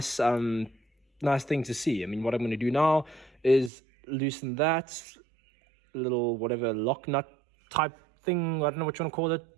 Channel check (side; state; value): left; drops out; at 3.7 s